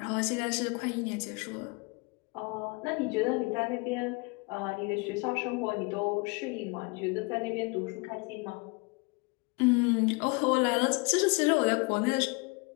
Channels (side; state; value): right; quieter; 28.7 dB